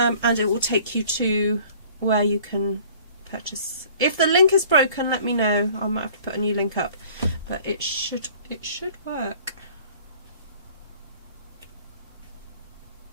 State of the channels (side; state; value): both; inverted; correlation -0.51